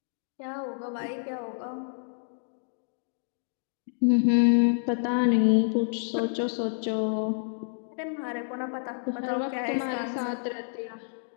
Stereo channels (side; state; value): right; silent; digital silence